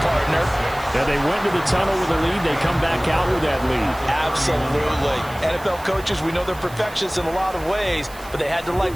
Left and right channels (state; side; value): noise; right; hiss, 20 dB below the sound